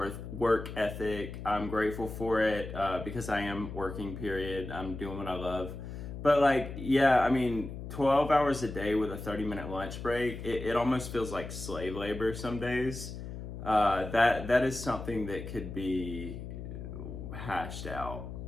ethic. I'm grateful for it because I am working, period. I'm doing what I love. But like, yeah, I mean, 12 hours a day with a 30-minute lunch break, it almost feels like slave labor some days. That is something that could be hashed out.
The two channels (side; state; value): left; noise; hum, 9 dB below the sound